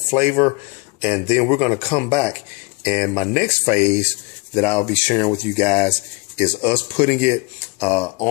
flavor. And then we're going to come back. And my next phase that I'll be sharing with you guys is us putting it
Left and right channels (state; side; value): quieter; right; 27.3 dB